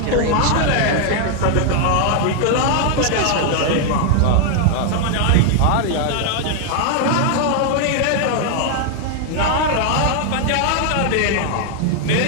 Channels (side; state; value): both; different; correlation 0.00